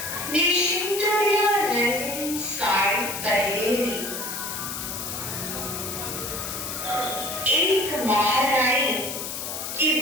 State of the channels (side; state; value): left; noise; hiss, 6 dB below the sound